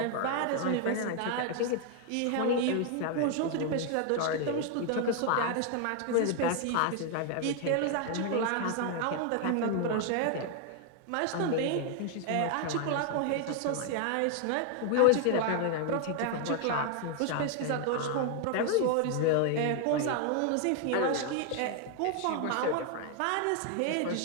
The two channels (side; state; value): both; different; correlation 0.00